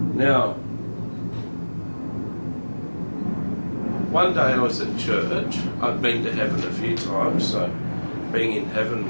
Now, one day I was at church. I'd been to heaven a few times, so being in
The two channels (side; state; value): both; inverted; correlation -1.00